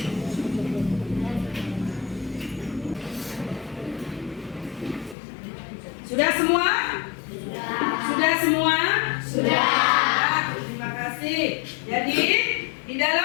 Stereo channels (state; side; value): drops out; right; at 5.2 s